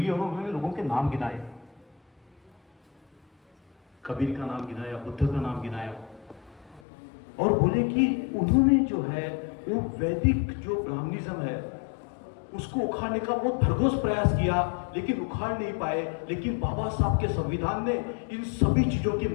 और उन्होंने लोगों के नाम गिनाए, कबीर का नाम गिनाया, बुद्ध का नाम गिनाया, और बोले कि उन्होंने जो है वो वैदिक जो ब्राह्मणिज्म है उसको उखाड़ने का बहुत भरघोस प्रयास किया, लेकिन उखाड़ नहीं पाए। लेकिन बाबा साहब के संविधान ने इन सभी चीजों की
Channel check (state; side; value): drops out; right; at 6.8 s